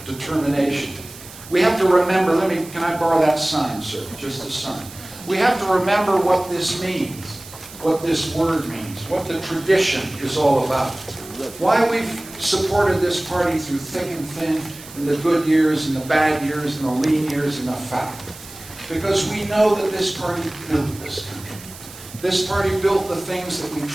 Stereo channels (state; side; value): noise; right; hiss, 17 dB below the sound